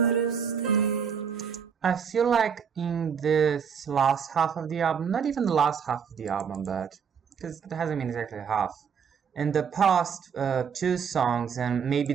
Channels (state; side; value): quieter; left; 7.0 dB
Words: have stayed. I feel like in this last half of the album, not even the last half of the album, but because it hasn't been exactly half, in the past two songs and maybe